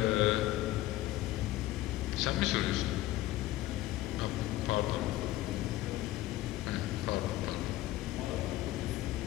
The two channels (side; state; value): right; quieter; 16.0 dB